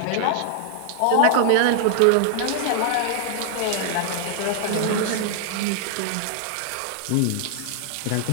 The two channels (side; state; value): both; different; correlation 0.00